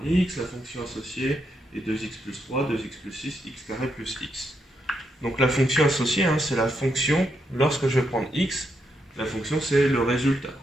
x, la fonction associée est 2x plus 3, 2x plus 6, x carré plus x. Donc la fonction associée, hein, c'est la fonction, lorsque je vais prendre x, la fonction c'est le résultat.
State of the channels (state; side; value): normal; both; correlation 0.80